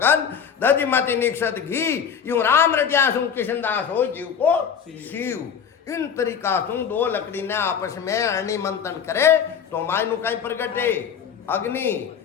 दधि मत निक्षत घी यूं राम रटिया सु किशनदास हो जीव को शिव इन तरीका सु दो लकड़ी ने आपस में अरणि मंथन करे तो मायनु कहीं प्रगटे अग्नि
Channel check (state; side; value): quieter; right; 7.5 dB